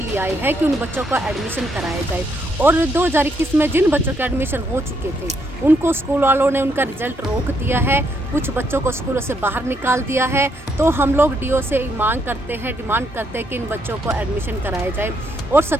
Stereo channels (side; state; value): both; normal; correlation 0.74